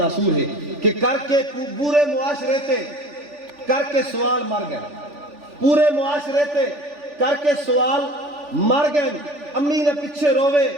ہے کہ کر کے پورے معاشرے تے کر کے سوال مر گئے. پورے معاشرے تے کر کے سوال مر گئے. امی نے پیچھے روے،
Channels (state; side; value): late; left; 3.4 ms